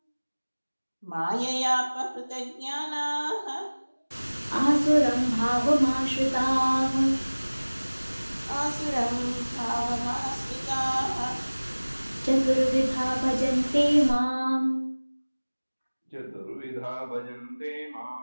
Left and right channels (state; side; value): inverted; both; correlation -1.00